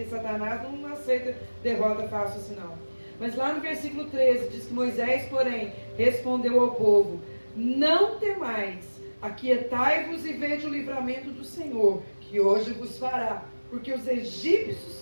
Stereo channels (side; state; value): both; inverted; correlation -1.00